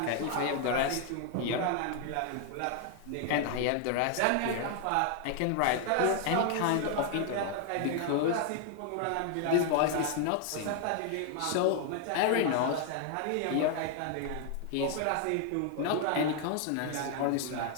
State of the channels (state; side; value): different; both; correlation 0.00